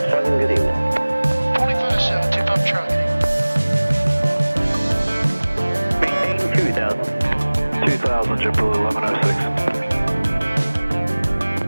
good evening. 25-7, 2 Papa Charlie. Maintain 2000. 2000, JetBlue 1106.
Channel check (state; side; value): inverted; both; correlation -1.00